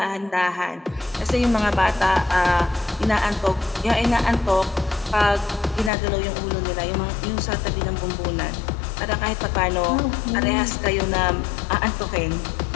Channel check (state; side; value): drops out; right; at 5.9 s